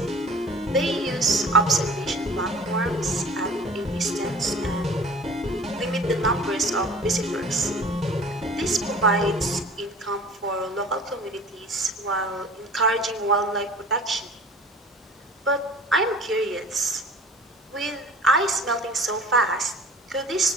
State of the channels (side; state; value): both; normal; correlation 0.44